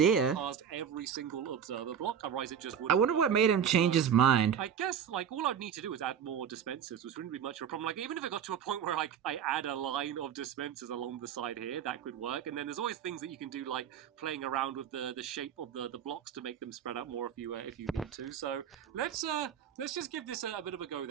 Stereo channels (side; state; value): left; quieter; 8.3 dB